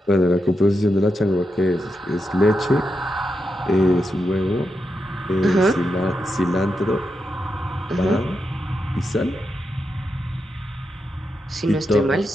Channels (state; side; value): normal; both; correlation 0.86